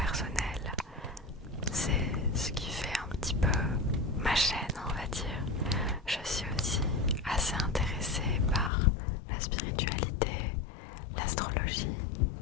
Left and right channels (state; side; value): drops out; right; at 8.7 s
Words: C'est ce qui fait un petit peu ma chaîne, on va dire. Je suis aussi assez intéressée par la spiritualité, l'astrologie,